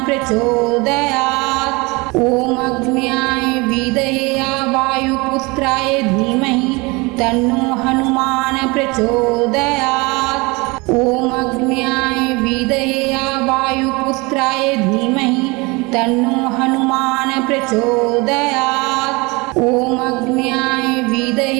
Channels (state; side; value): quieter; left; 25.7 dB